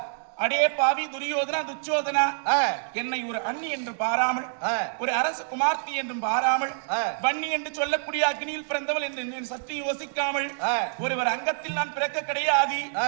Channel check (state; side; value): silent; left; digital silence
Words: அடே பாவி துரியோதனா துச்சோதனா, என்னை ஒரு அண்ணி என்று பாராமல் ஒரு அரச குமார்த்தி என்றும் பாராமல் வன்னி என்று சொல்லக்கூடிய அக்னியில் பிறந்தவள் என்று சற்று யோசிக்காமல் ஒருவர் அங்கத்தில் நான் பிறக்க கிடையாது.